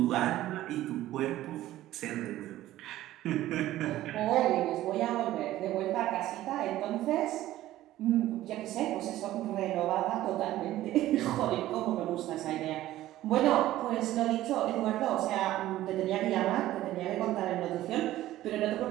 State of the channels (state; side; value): quieter; left; 14.7 dB